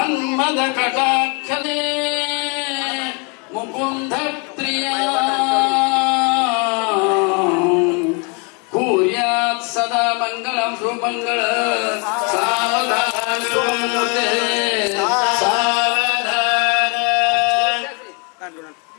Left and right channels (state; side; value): quieter; right; 32.8 dB